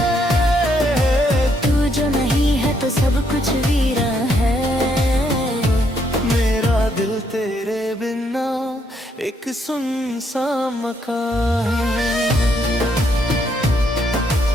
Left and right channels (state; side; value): normal; both; correlation 0.73